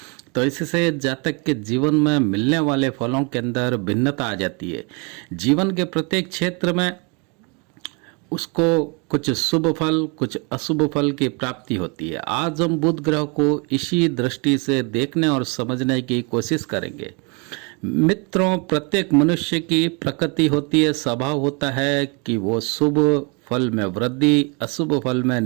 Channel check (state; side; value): quieter; left; 32.0 dB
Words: तो इससे जातक के जीवन में मिलने वाले फलों के अंदर भिन्नता आ जाती है। जीवन के प्रत्येक क्षेत्र में उसको कुछ शुभ फल कुछ अशुभ फल की प्राप्ति होती है। आज हम बुध ग्रह को इसी दृष्टि से देखने और समझने की कोशिश करेंगे। मित्रों, प्रत्येक मनुष्य की प्रकृति होती है, स्वभाव होता है कि वो शुभ फल में वृद्धि अशुभ फल में